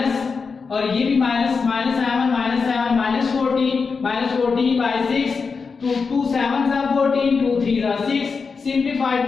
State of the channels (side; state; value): right; quieter; 5.0 dB